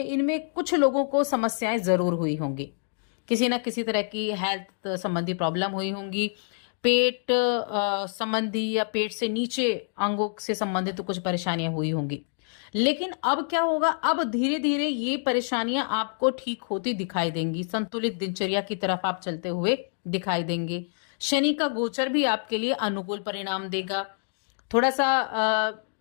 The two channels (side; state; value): right; silent; digital silence